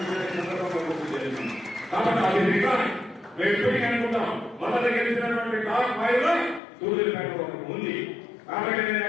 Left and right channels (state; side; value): drops out; right; at 6.6 s